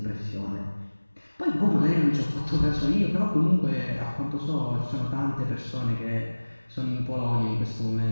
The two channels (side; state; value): both; inverted; correlation -1.00